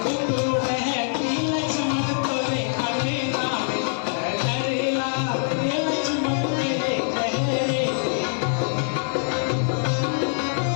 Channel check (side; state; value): right; silent; digital silence